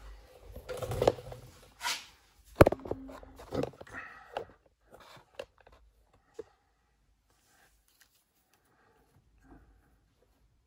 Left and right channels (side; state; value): both; identical; correlation 1.00